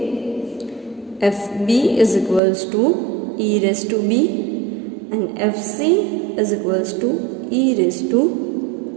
fb is equals to e raised to b, and fc is equals to e raised to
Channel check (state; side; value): drops out; left; at 2.4 s